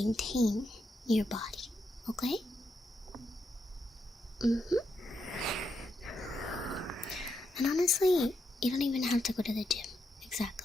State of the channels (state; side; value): normal; both; correlation 0.82